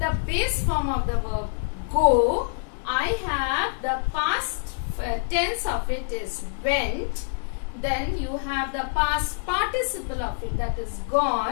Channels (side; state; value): right; silent; digital silence